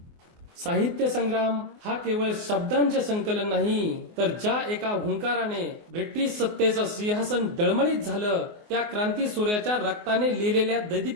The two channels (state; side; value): late; left; 24 ms